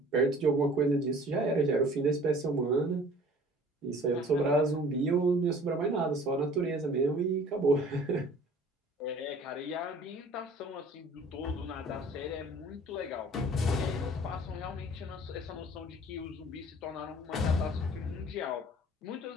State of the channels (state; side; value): normal; both; correlation 0.50